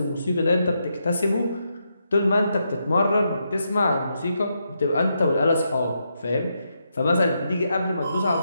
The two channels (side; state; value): both; inverted; correlation -0.82